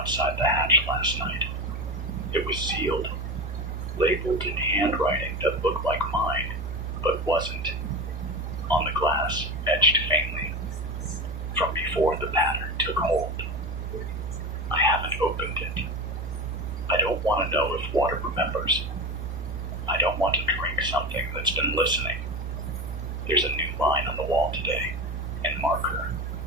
the hatch last night. It was sealed, labeled in handwriting that looked like mine, but wasn't. On the glass, etched faintly, from before the pattern took hold. I haven't opened it. I don't want to know if water remembers. I don't want to drink something that's been listening. There's a new line on the wall today, and marker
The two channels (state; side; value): noise; left; hum, 18 dB below the sound